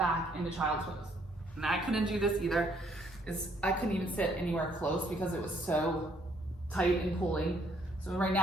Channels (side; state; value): both; normal; correlation 0.67